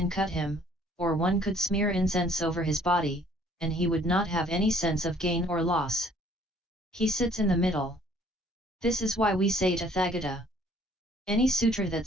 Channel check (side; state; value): both; normal; correlation 0.59